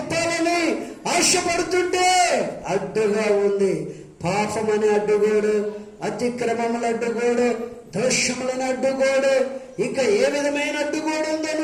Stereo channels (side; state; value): both; identical; correlation 1.00